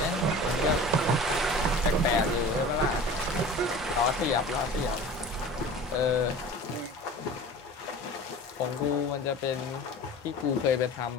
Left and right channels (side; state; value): both; normal; correlation 0.38